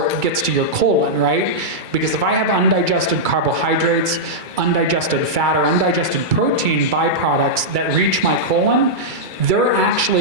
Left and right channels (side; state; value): left; late; 2.3 ms